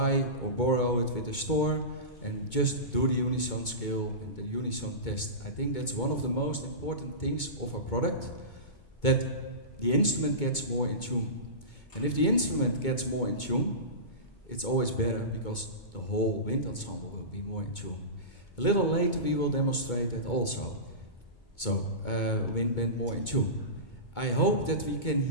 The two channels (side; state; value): right; late; 2.2 ms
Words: or borrow it with a store and just do the unison scale and the unison test. I think that's one of the most important things of our product, that the instrument gets more in tune. And if the instrument gets more in tune, it's always better, because the whole wind ensemble will be more in tune. A little later we will demonstrate that also. So, wind band more in tune. I hope that we can